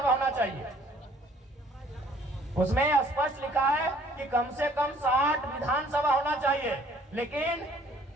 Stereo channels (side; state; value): both; normal; correlation 0.58